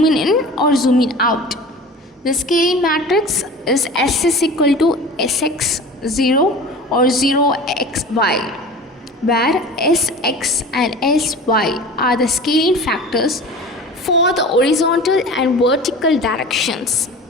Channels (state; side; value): normal; both; correlation 0.37